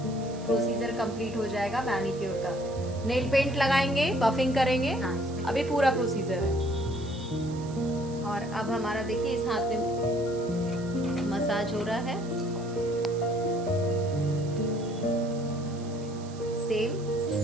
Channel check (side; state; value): right; noise; hiss, 20 dB below the sound